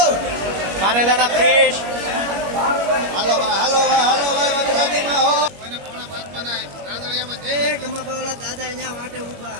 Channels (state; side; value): late; left; 21 ms